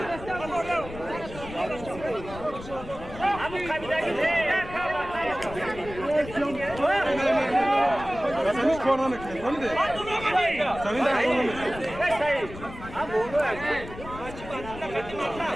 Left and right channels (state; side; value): noise; left; rumble, 13 dB below the sound